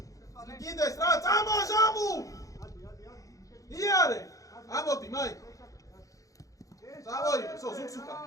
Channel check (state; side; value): late; right; 0.16 ms